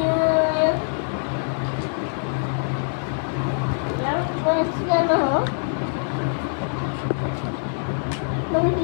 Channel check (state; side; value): silent; right; digital silence